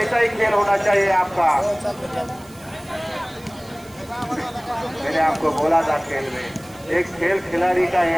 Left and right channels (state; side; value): noise; right; hiss, 24 dB below the sound